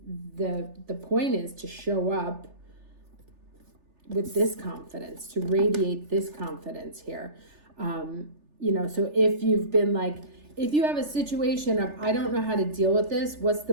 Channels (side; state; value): left; late; 3.4 ms